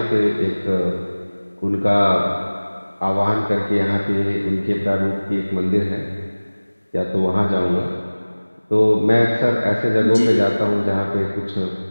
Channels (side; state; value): both; inverted; correlation -1.00